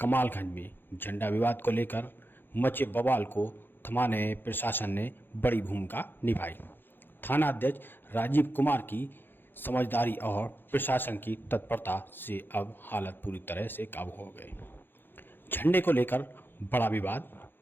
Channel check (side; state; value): right; late; 0.099 ms